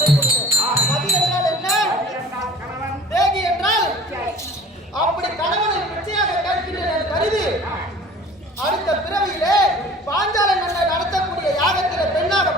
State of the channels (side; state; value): both; normal; correlation 0.46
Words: கொடுத்தேன். பதி என்றால் என்ன? தேகி என்றால் அப்படி கணவனை பிச்சையாக கேட்கின்றேன் கருதி அடுத்த பிறவியிலே பாஞ்சால மன்னர் நடத்தக்கூடிய யாகத்திலே பெண்ணாக